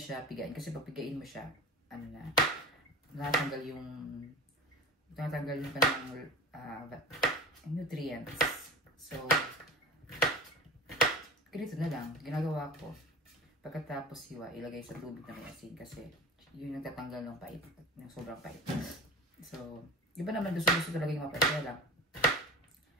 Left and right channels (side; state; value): both; normal; correlation 0.34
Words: pigain. Kasi pag pigain mo siya, natanggal yung kanyang nutrients. So, ganito na lang. Ginagawa ko. Pagkatapos hiwa, ilagay sa tubig na may asin. Kasi, yun yung tatanggal ng pait. Yung sobrang pait. So, iba naman gusto talaga yung mapait. Kaya lang,